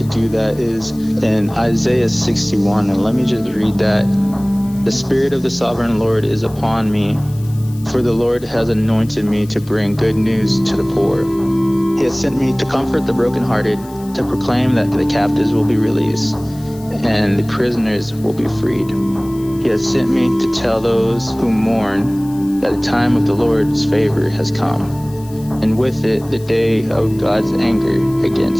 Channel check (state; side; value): noise; left; hiss, 23 dB below the sound